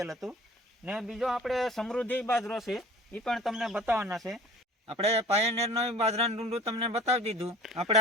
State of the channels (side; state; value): both; normal; correlation 0.43